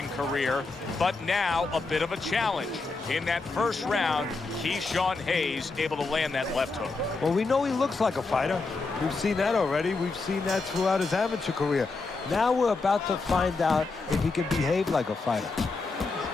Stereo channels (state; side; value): quieter; right; 3.8 dB